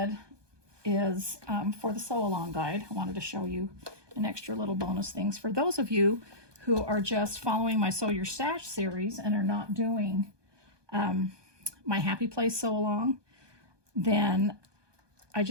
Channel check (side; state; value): left; late; 1.2 ms